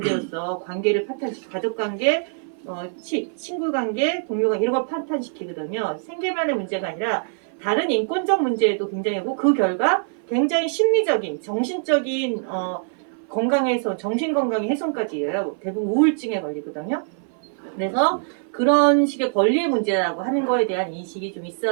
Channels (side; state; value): left; silent; 57 dB below the other